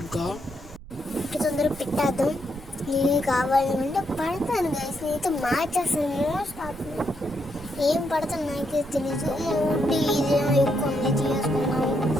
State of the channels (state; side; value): noise; right; rumble, 17 dB below the sound